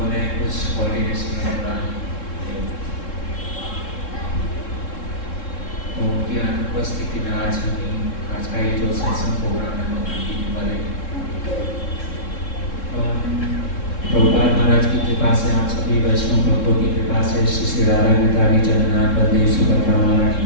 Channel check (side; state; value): right; late; 3.7 ms